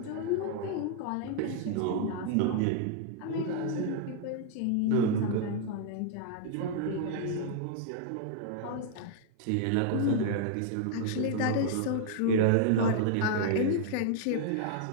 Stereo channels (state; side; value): different; both; correlation -0.01